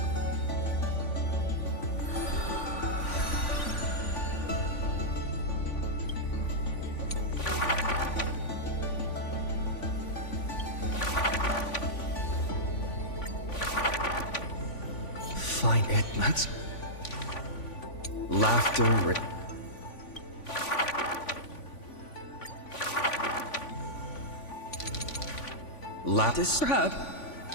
find it. That's laughter. Lattice.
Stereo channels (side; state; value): right; late; 3.5 ms